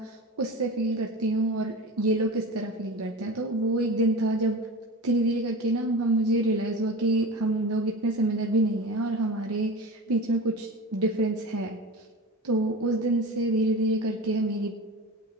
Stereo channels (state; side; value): normal; both; correlation 0.31